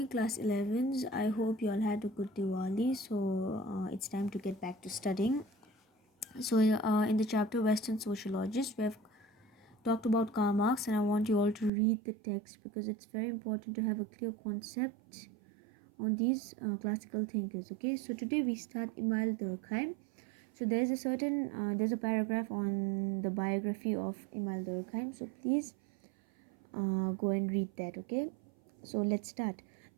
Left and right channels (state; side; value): drops out; left; at 11.7 s